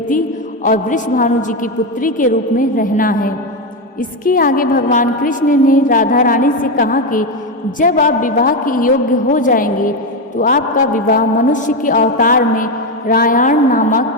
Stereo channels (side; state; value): both; normal; correlation 0.10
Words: और वृषभानु जी की पुत्री के रूप में रहना है। इसके आगे भगवान कृष्ण ने राधा रानी से कहा कि जब आप विवाह के योग्य हो जाएंगे तो आपका विवाह मनुष्य के अवतार में रायण